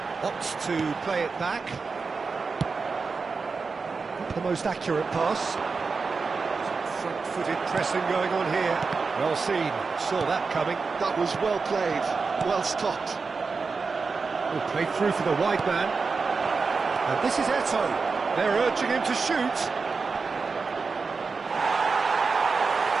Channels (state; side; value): quieter; left; 4.6 dB